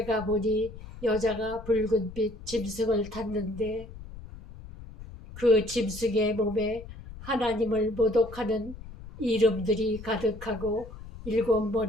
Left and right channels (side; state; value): left; noise; rumble, 15 dB below the sound